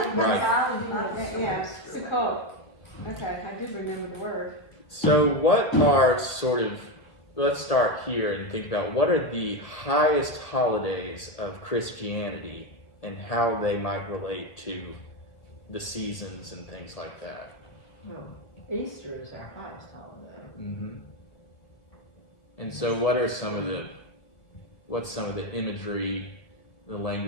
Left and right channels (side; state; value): right; late; 2.0 ms